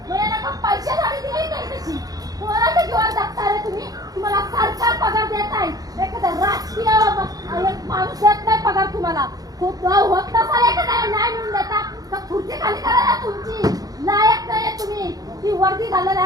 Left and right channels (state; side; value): late; left; 0.18 ms